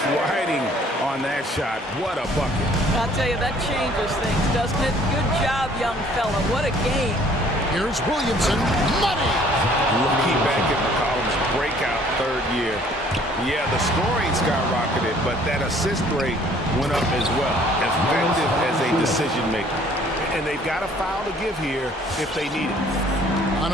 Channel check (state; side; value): normal; both; correlation 0.57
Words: riding on that shot. What a bucket. I'll tell you, that changes things, doesn't it? Good job, young fella. What a game. Here's Williamson. Money! Lucky back in McCollum's breakout third year. Yeah, the scoring skyrocketed, but that assist rate went up as well. Effective as a decision maker. And they've got a foul to give here if they need it. On